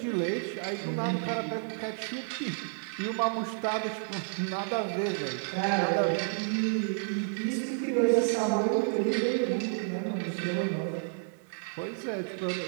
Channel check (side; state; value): left; silent; 57 dB below the other